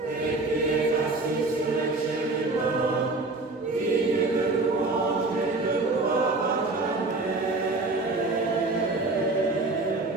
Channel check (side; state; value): left; quieter; 3.3 dB